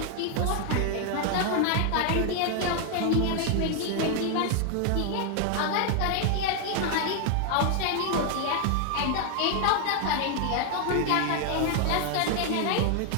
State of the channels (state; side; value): different; both; correlation 0.00